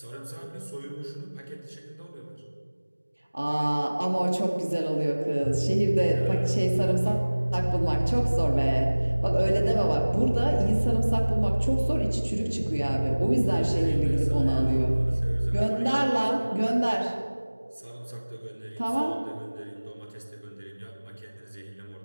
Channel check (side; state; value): both; inverted; correlation -1.00